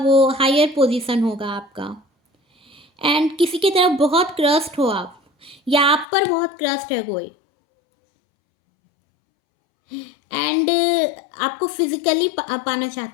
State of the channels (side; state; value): right; drops out; at 6.1 s